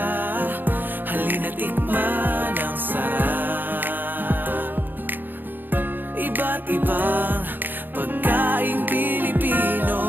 halina't tikman ang sarap. Iba't ibang pagkaing Pilipino,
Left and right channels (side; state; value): left; late; 0.091 ms